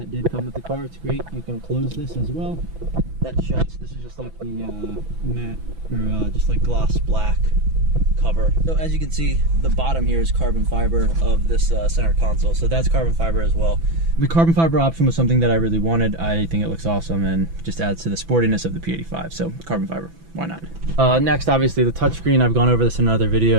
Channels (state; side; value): late; left; 6.0 ms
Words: did come with the car. It's great. You can close this as well. That shuts. This is just like the matte, or just like gloss black cover. So as you can see, the bottom here is carbon fiber of this center console. So that's carbon fiber as well. The carbon fiber option was something that I really wanted. I think it looks awesome and just adds to the sportiness of the P85. So carbon fiber, why not? Next, obviously the touchscreen. I've gone over this in another